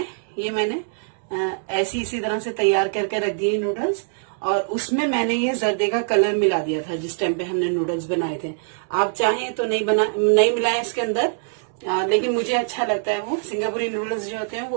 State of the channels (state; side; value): silent; left; digital silence